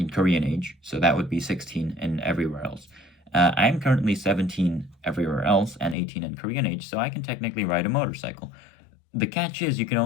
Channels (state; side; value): drops out; right; at 6.0 s